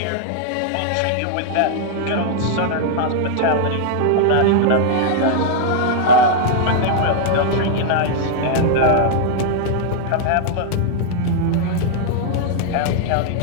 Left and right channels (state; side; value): different; both; correlation -0.01